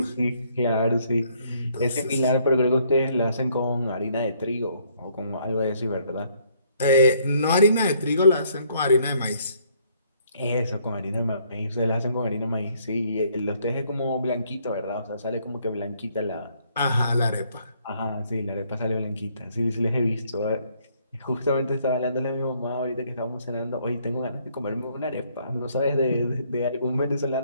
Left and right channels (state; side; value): inverted; both; correlation -0.67